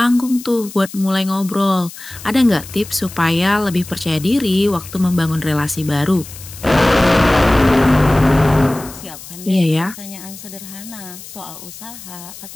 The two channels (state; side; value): noise; left; hiss, 15 dB below the sound